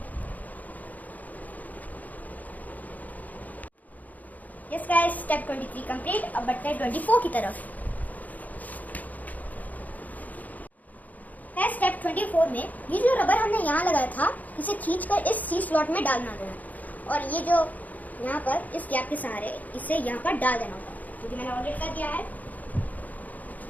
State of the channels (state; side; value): late; right; 0.079 ms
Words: Yes guys step 23 complete. अब बढ़ते हैं 24 की तरफ। स्टेप 24 में ये जो रबर हमने यहाँ लगाया था इसे खींचकर इस सी स्लॉट में डालना देना और ये जो यहाँ पर इस गैप के सहारे इसे यहाँ पर डाल देना होगा क्योंकि मैंने ऑलरेडी कर दिया है।